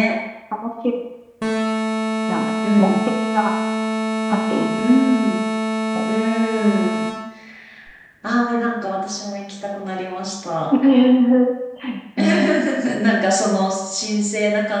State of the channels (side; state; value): both; identical; correlation 1.00